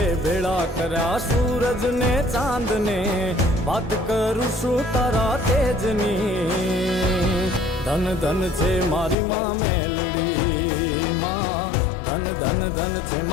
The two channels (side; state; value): right; drops out; at 9.2 s